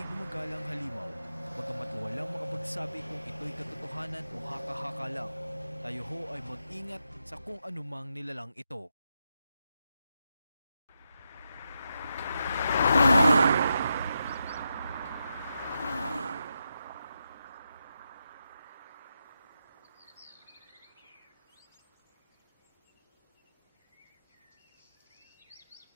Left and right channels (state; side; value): inverted; both; correlation -0.85